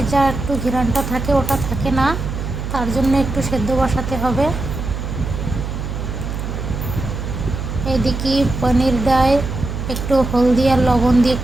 যা একটু ঘ্রাণটা থাকে ওটা থাকে না, তার জন্য একটু সেদ্ধ বসাতে হবে। এদিকে পনিরটায় একটু হলদি আর লবণ দিয়ে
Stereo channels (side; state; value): right; noise; hum, 5 dB below the sound